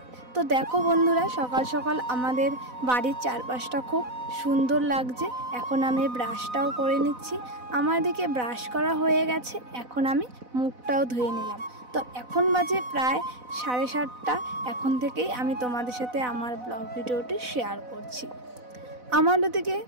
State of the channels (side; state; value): left; late; 4.0 ms